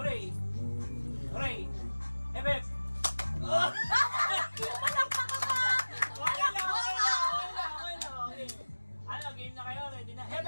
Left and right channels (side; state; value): both; inverted; correlation -1.00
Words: Hooray! Hep, hep! Okay. Ano, game na kayo? Ready na? Hep,